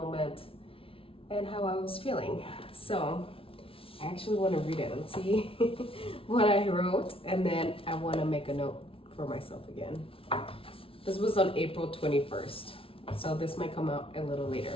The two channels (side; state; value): right; late; 0.26 ms